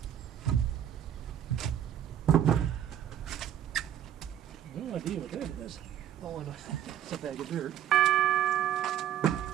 No idea what that is. Oh, it's a bag of dirt.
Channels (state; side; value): quieter; left; 10.6 dB